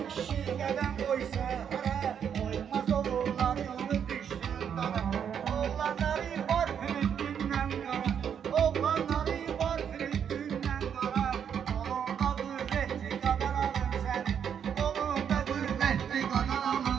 kişi qədəm qoysa hara, Qoymaz oğulları onu düşdürdar. Oğlanları var Filistin'den qara, Oğlanları var Filistin'den qara, Qolunda qüvvətli qadan alım səni, Qolunda qüvvətli qadan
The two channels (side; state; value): left; quieter; 8.1 dB